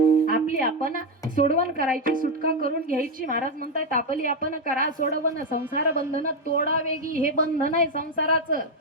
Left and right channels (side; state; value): both; normal; correlation 0.06